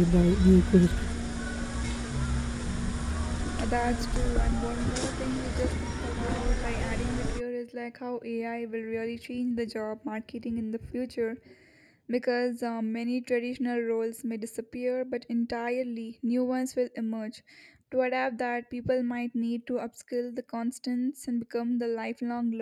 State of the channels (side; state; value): both; identical; correlation 1.00